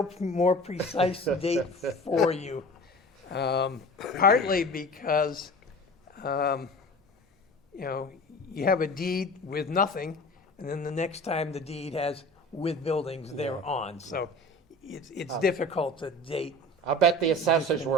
more precise date for you. Partly because, you have a deed with nothing, and then the next time the deed has with buildings thereon. So it's difficult to date. I'll bet the assessors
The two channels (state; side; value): normal; both; correlation 0.39